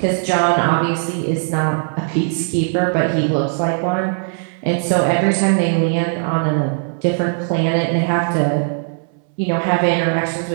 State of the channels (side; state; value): left; silent; 67 dB below the other